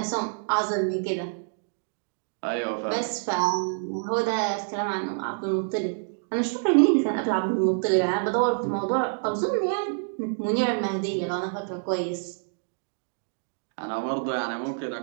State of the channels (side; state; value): left; silent; digital silence